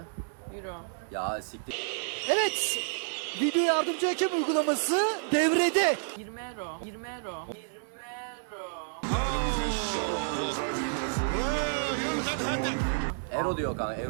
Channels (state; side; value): silent; left; digital silence